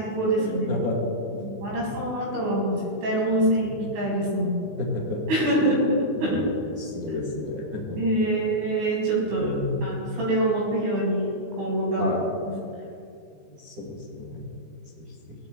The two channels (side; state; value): left; late; 19 ms